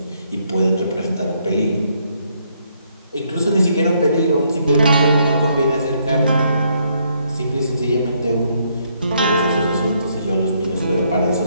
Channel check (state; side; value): inverted; both; correlation -0.72